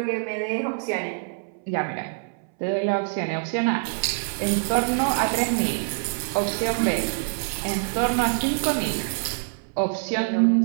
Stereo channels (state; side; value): silent; left; 62 dB below the other